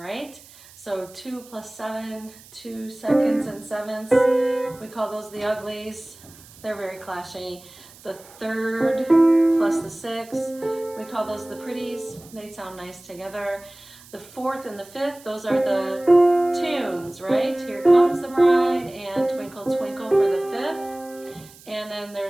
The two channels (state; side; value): noise; right; hiss, 22 dB below the sound